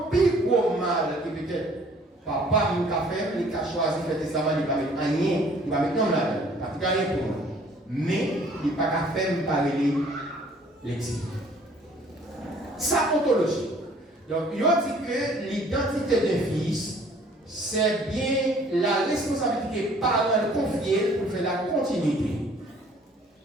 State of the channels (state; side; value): normal; both; correlation 0.56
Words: plus gros mal qui peut-être papa nous a fait, il a choisi de faire testament, il va mettre rien, il va mettre non là, parce qu'il rien pour moi. Mais il n'a pas qu'à faire parler l'exil. Ça ontologie. Donc, il a dit que l'identité d'un fils, c'est bien la responsabilité parentale confiée pour faire la continuité.